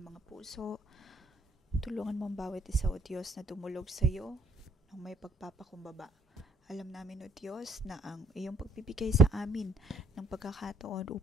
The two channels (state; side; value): normal; both; correlation 0.66